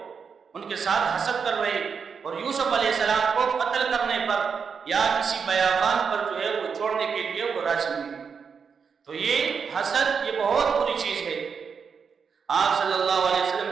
ان کے ساتھ حسد کر رہے، اور یوسف علیہ السلام کو قتل کرنے پر یا کسی بیابان پر جو ہے وہ چھوڑنے کے لیے وہ راضی نہیں۔ تو یہ حسد یہ بہت بری چیز ہے۔ آپ صلی اللہ علیہ وسلم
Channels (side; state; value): left; quieter; 6.1 dB